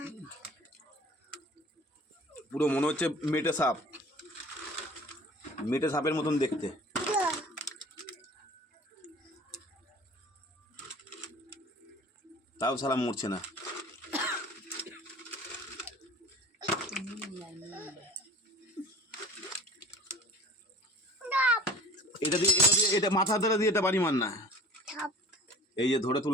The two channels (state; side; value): normal; both; correlation 0.44